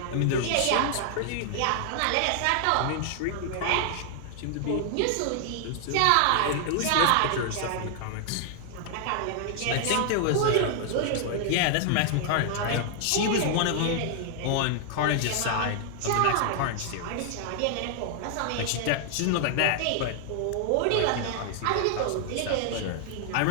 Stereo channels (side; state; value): both; different; correlation 0.00